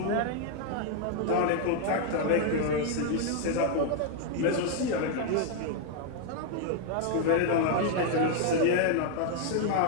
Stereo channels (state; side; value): different; both; correlation 0.00